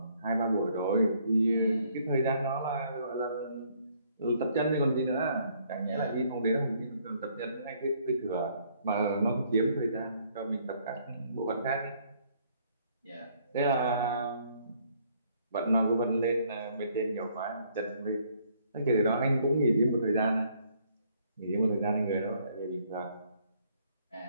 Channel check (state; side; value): inverted; both; correlation -0.65